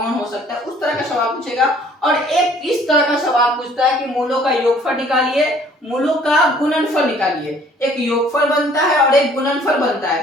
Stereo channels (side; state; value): both; normal; correlation 0.57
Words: हो सकता है, उस तरह का सवाल पूछेगा। और एक इस तरह का सवाल पूछता है कि मूलों का योगफल निकालिए, मूलों का गुणनफल निकालिए। एक योगफल बनता है और एक गुणनफल बनता